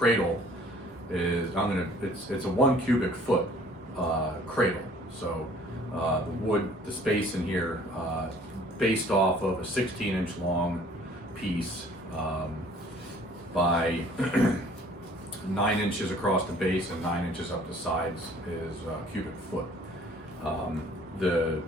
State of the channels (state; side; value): normal; both; correlation 0.55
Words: is, it's a 1 cubic foot cradle. So the wood, the space in here, based off of a 16-inch long piece by 9 inches across the base and 9 inches up the sides is a cubic foot.